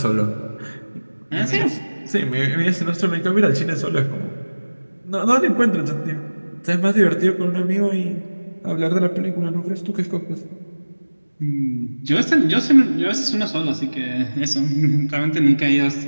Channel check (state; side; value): inverted; both; correlation -1.00